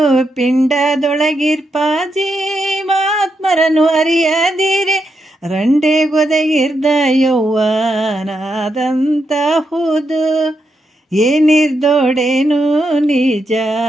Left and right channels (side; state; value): both; normal; correlation 0.83